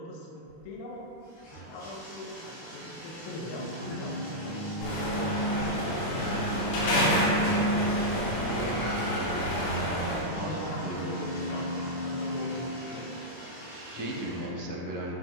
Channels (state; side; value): late; right; 26 ms